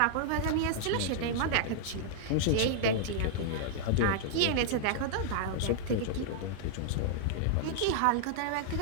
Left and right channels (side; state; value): both; different; correlation -0.01